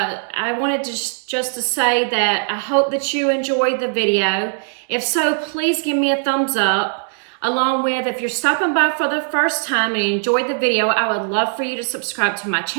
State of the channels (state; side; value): silent; left; digital silence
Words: wanted to just to say that I hope that you enjoyed the video. If so, please give me a thumbs up. Along with, if you're stopping by for the first time and you enjoyed the video, I would love for you to subscribe to my